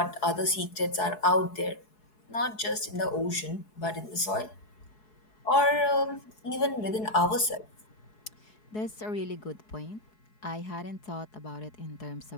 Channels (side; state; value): right; late; 4.7 ms